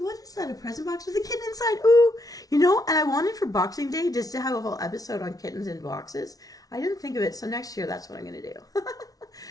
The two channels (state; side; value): late; right; 0.18 ms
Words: what is that, a present box with a kitten inside? Ooh. You know, and I wanted for Boxing Day just to have a whole episode on kittens in boxes. I didn't think of it, so next year that's what I'm going to do.